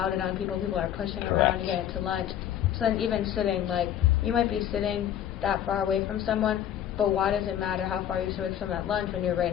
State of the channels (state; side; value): quieter; right; 10.6 dB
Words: on people. People are pushing around to get into lunch. So then even sitting, like, you might be sitting that far away from someone, but why does it matter how far you sit away from someone at lunch when you're right